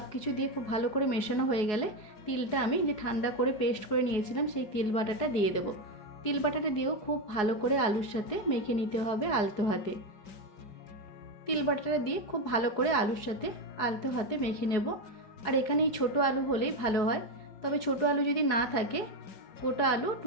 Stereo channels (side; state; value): right; late; 4.8 ms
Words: কিছু দিয়ে খুব ভালো করে মেশানো হয়ে গেলে তিলটা আমি যে ঠান্ডা করে পেস্ট করে নিয়েছিলাম সেই তিল বাটাটা দিয়ে দেব। তিল বাটাটা দিয়েও খুব ভালো করে আলুর সাথে মেখে নিতে হবে আলতো হাতে। তিল বাটাটা দিয়ে খুব ভালো করে আলুর সাথে আলতো হাতে মেখে নেব। আর এখানে এই ছোটো আলু হলেই ভালো হয়। তবে ছোটো আলু যদি না থাকে গোটা আলু